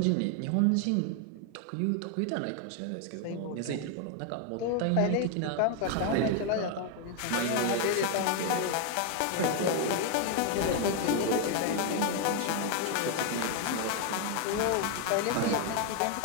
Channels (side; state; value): both; different; correlation 0.01